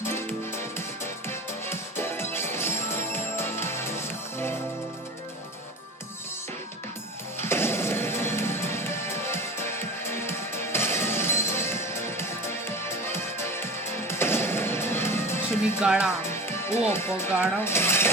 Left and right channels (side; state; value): both; normal; correlation 0.34